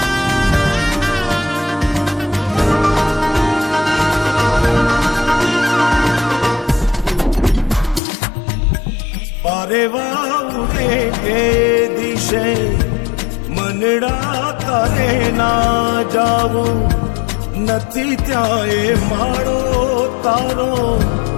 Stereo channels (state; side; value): drops out; right; at 8.0 s